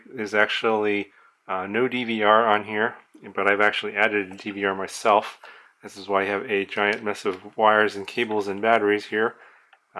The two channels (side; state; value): both; identical; correlation 1.00